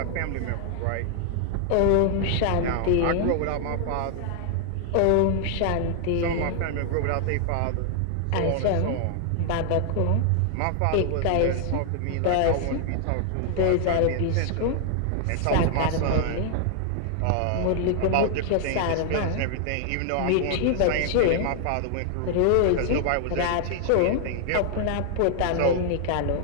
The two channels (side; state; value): both; different; correlation 0.00